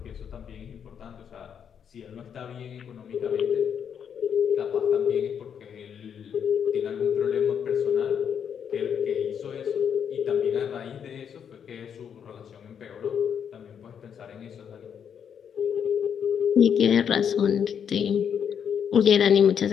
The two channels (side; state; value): right; quieter; 7.9 dB